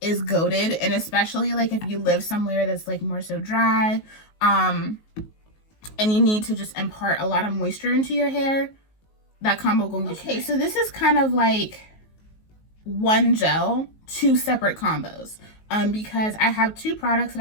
is goated, and especially like if you live somewhere that's like more so dry, and you need to just impart a lot of moisture into your hair, that combo gonna get okay. So this is kind of like one gel, two separate combos, because I have two products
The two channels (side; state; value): right; late; 19 ms